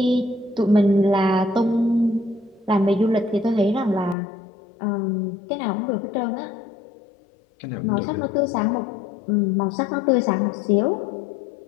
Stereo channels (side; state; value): right; drops out; at 4.2 s